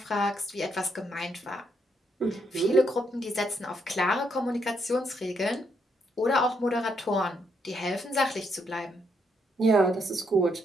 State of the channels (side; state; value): both; normal; correlation 0.76